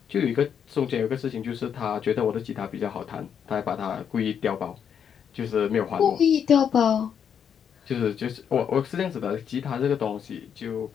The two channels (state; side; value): quieter; right; 7.9 dB